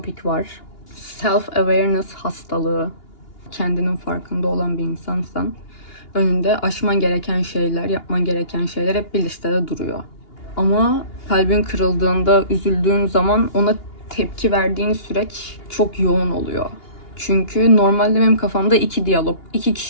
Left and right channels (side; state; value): right; late; 2.8 ms